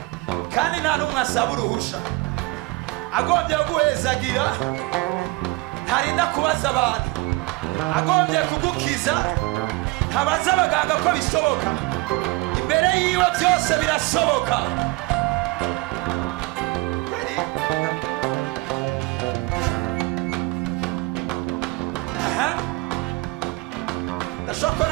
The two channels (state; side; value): quieter; left; 22.3 dB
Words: kandi nta n'umwe asaba uruhusha. Agombye guhezagira, ntarinda kubaza abantu. Agombye kugukiza, ntabaza abaganga ko bishoboka. Imbere yiwe byose birasoboka. Ndashaka